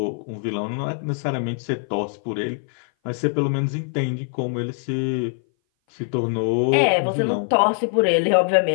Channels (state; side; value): silent; right; 59 dB below the other